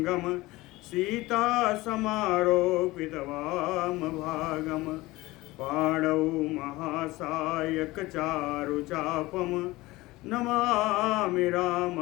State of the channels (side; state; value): right; quieter; 19.8 dB